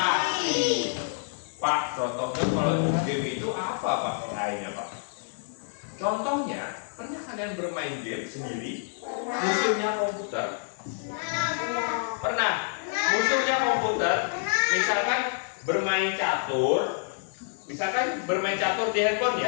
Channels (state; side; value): silent; right; digital silence